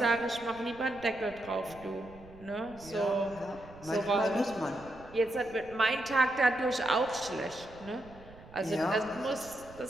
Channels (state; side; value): noise; right; rumble, 20 dB below the sound